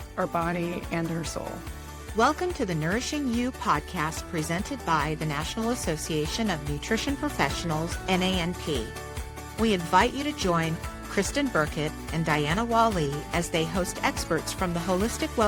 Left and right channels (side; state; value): both; identical; correlation 1.00